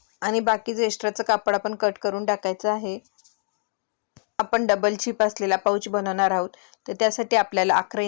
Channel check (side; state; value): right; silent; 62 dB below the other